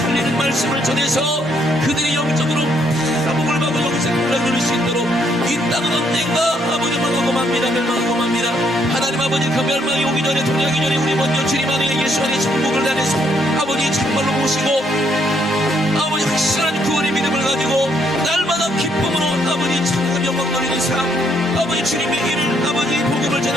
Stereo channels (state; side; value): normal; both; correlation 0.71